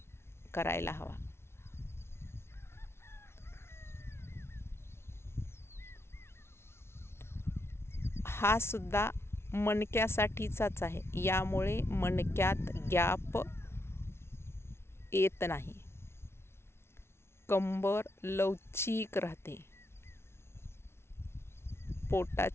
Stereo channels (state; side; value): late; right; 0.12 ms